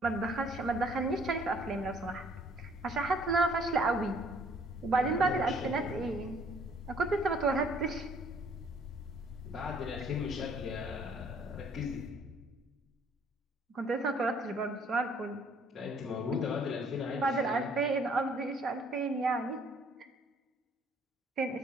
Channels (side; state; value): both; normal; correlation 0.60